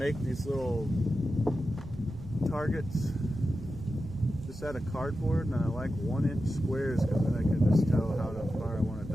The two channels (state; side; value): noise; right; rumble, 14 dB below the sound